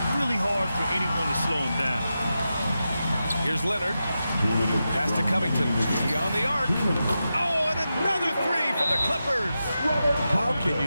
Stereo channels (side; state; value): both; inverted; correlation -0.90